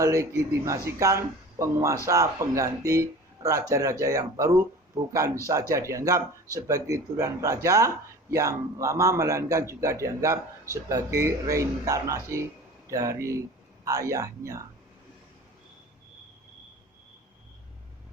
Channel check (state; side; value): normal; both; correlation 0.39